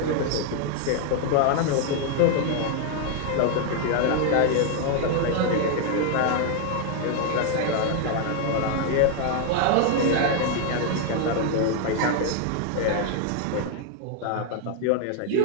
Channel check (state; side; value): different; both; correlation 0.00